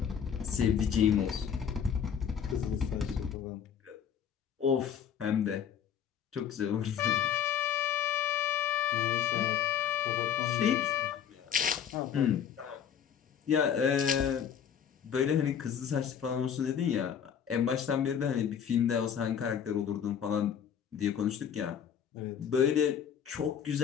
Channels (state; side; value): quieter; right; 8.3 dB